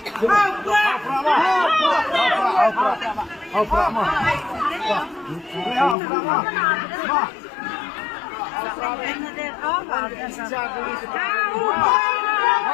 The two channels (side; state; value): right; drops out; at 6.0 s